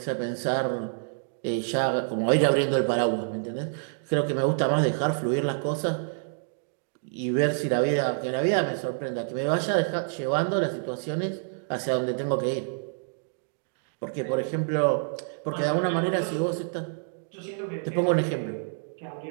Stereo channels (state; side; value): silent; left; digital silence